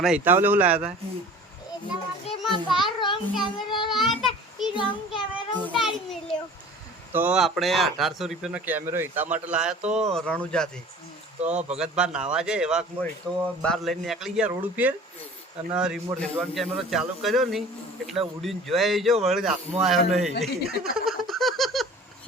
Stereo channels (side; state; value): both; normal; correlation 0.44